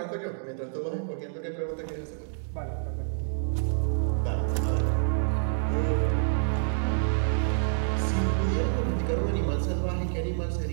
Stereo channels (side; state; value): left; silent; digital silence